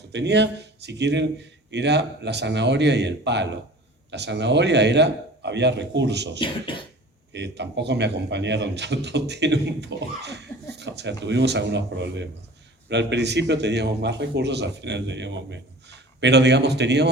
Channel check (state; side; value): normal; both; correlation 0.42